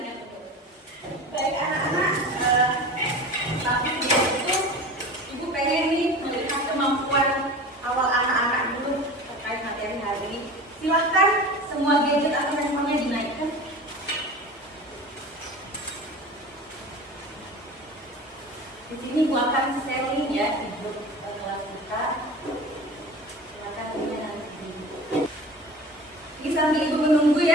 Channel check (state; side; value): normal; both; correlation 0.35